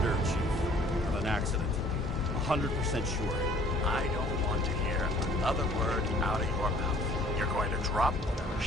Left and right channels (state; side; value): normal; both; correlation 0.56